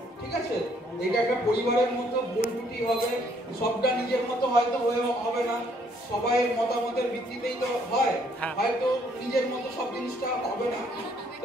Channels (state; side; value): normal; both; correlation 0.66